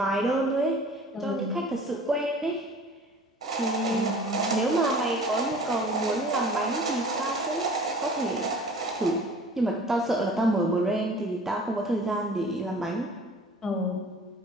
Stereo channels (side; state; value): both; normal; correlation 0.46